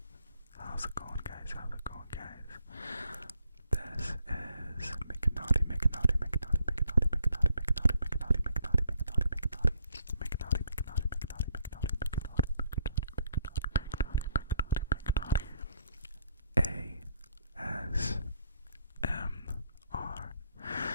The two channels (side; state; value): both; inverted; correlation -0.70